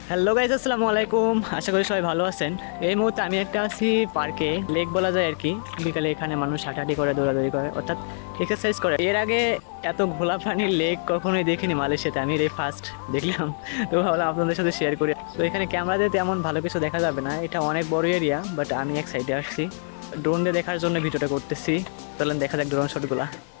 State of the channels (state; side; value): silent; right; 62 dB below the other